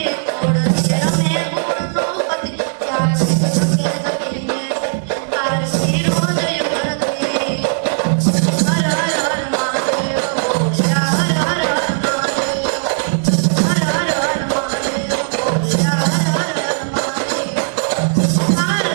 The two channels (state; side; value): silent; left; digital silence